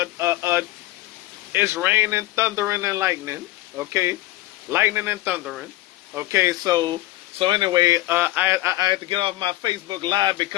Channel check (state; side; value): quieter; right; 17.6 dB